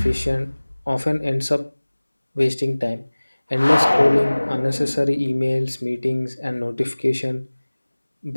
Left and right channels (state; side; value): inverted; both; correlation -1.00